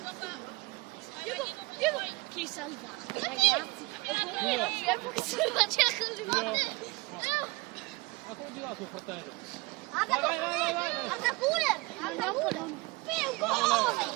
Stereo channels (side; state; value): left; quieter; 24.8 dB